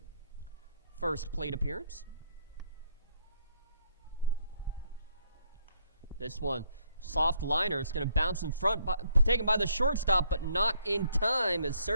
first plate appearance. This one, soft liner. It's going to bounce in front, taken by the shortstop, but not in time as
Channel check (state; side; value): inverted; both; correlation -0.68